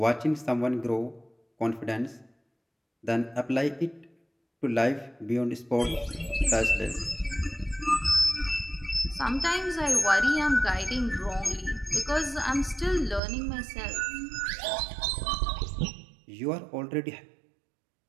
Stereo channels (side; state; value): left; drops out; at 13.2 s